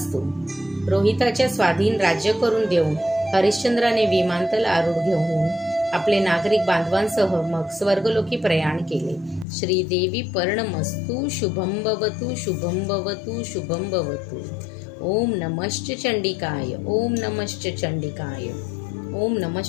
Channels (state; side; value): drops out; right; at 9.5 s